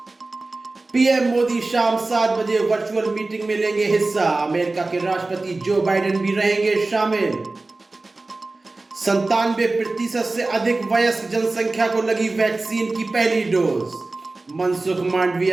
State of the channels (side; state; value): left; quieter; 3.3 dB